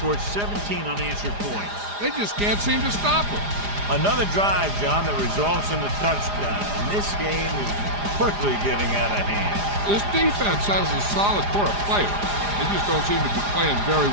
17 unanswered points. They just can't seem to stop them. Another drive, John, that results in a touchdown. And this game is quickly getting out of hand. This defense has a solid core of players. They just don't seem to be playing very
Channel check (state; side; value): late; left; 4.9 ms